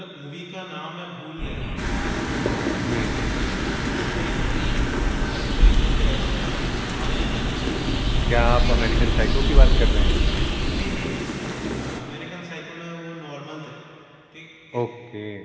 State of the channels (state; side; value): identical; both; correlation 1.00